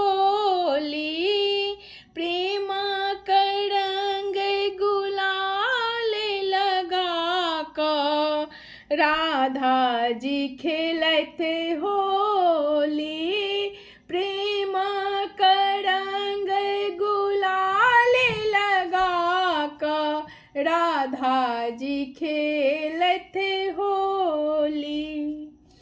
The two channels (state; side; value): identical; both; correlation 1.00